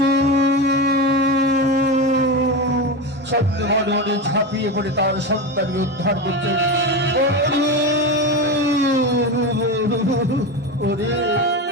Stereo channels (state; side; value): normal; both; correlation 0.19